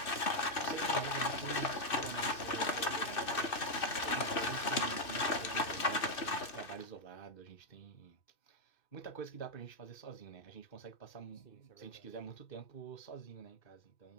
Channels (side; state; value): right; late; 2.6 ms